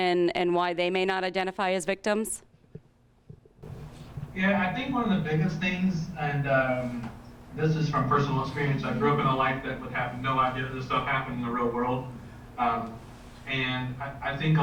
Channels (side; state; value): both; identical; correlation 1.00